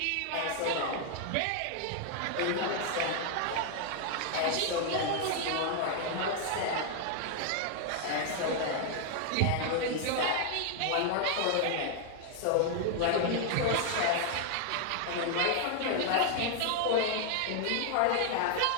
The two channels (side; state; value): both; different; correlation 0.00